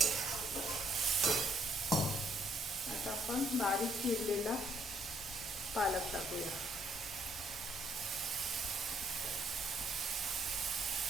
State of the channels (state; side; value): normal; both; correlation 0.69